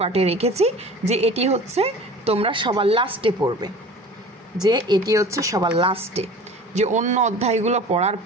রেখেছি, যে এটি হচ্ছে তোমরা সবার লাস্টে পড়বে, যে অন্য অধ্যায়গুলো পড়ার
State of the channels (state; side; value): normal; both; correlation 0.41